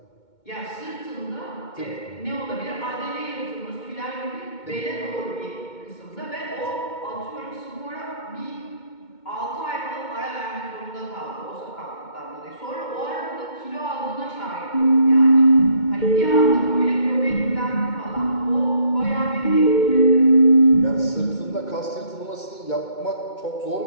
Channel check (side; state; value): right; late; 2.2 ms